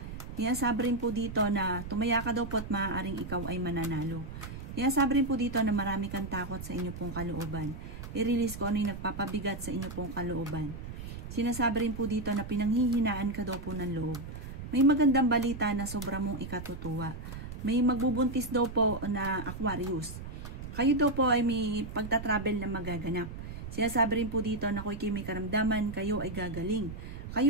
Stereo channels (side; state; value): right; noise; rumble, 9 dB below the sound